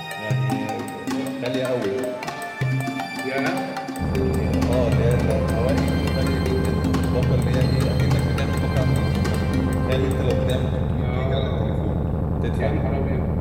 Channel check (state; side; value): identical; both; correlation 1.00